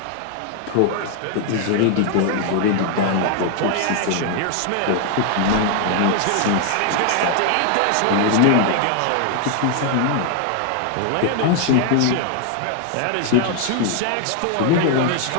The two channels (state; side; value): different; both; correlation 0.00